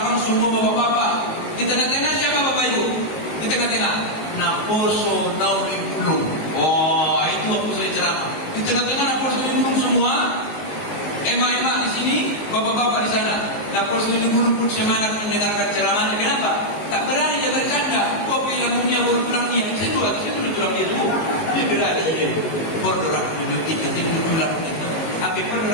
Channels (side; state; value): right; late; 19 ms